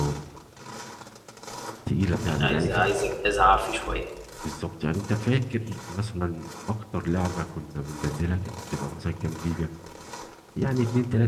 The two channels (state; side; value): identical; both; correlation 1.00